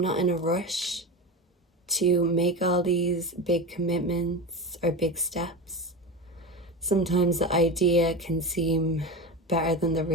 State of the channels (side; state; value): both; normal; correlation 0.23